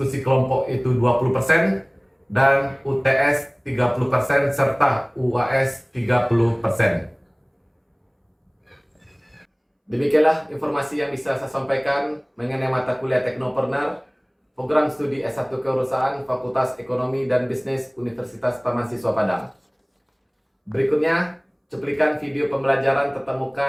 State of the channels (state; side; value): identical; both; correlation 1.00